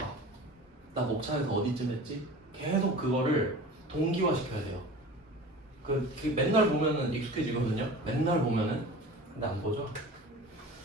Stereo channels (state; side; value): normal; both; correlation 0.38